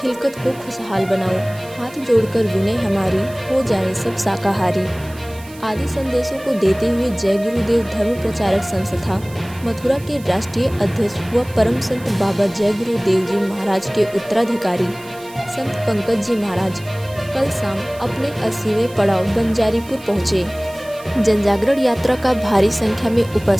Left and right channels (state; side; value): noise; right; hiss, 21 dB below the sound